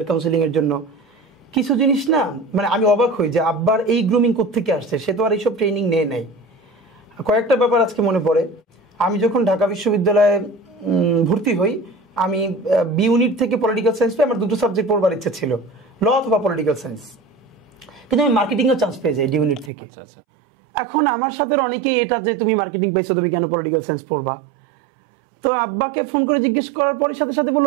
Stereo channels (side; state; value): left; drops out; at 19.7 s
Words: কাউন্সিলিং এর জন্য। কিছু জিনিস না, মানে আমি অবাক হই যে আব্বার এই গ্রুমিং কোত্থেকে আসছে, সে তো আর এইসব ট্রেনিং নেয় নাই। কয়েকটা ব্যাপার আজকে মনে পড়ে। আমি যখন ঢাকা বিশ্ববিদ্যালয়ে ভর্তি হই, আমি বি ইউনিট থেকে পলিটিক্যাল সায়েন্স পেয়ে আমার দুটো সাবজেক্ট পড়বার ইচ্ছা ছিল, ল অথবা পলিটিক্যাল সায়েন্স, কিন্তু আমি মার্কেটিংয়েও চান্স পেয়ে যাই ডি ইউনিট থেকে। আচ্ছা আচ্ছা। এখন আমার সাথে অনেকেই এটা যে তুমি মার্কেটিং পাইছো, তুমি কেন পলিটিক্যাল সায়েন্স পড়বা? তো আব্বাকে ফোন করে জিজ্ঞেস করার পরে সাথে সাথে